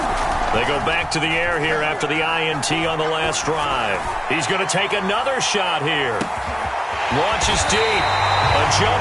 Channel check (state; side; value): identical; both; correlation 1.00